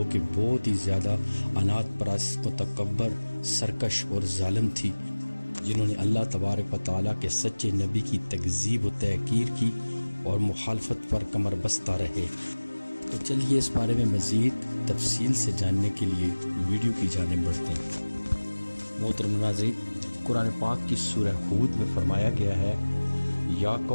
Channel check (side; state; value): both; inverted; correlation -1.00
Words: کہ بہت ہی زیادہ عناد پرست، متکبر، سرکش اور ظالم تھی، جنہوں نے اللہ تبارک و تعالیٰ کے سچے نبی کی تکذیب و تحقیر کی اور مخالفت پر کمر بستہ رہے۔ تو چلیے اس بارے میں مزید تفصیل سے جاننے کے لیے ویڈیو کی جانب بڑھتے ہیں۔ محترم ناظرین، قرآن پاک کی سورہ ہود میں فرمایا گیا ہے، یا